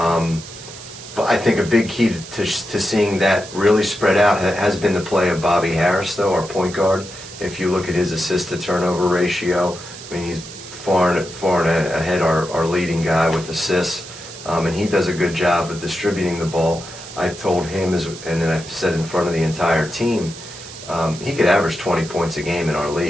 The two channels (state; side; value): noise; right; hiss, 14 dB below the sound